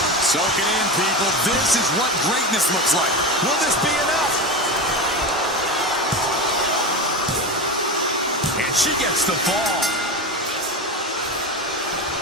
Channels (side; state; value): both; normal; correlation 0.22